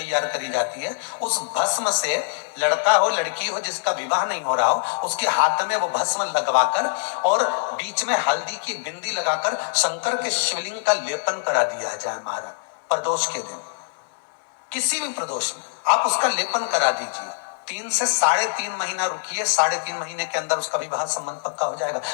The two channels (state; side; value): silent; right; digital silence